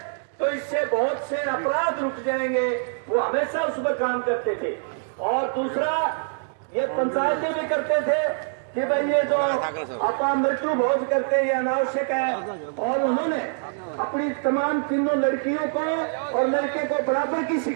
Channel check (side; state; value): left; silent; digital silence